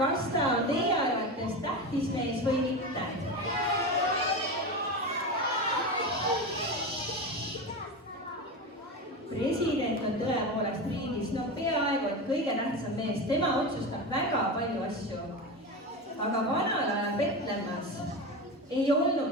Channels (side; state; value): both; normal; correlation 0.22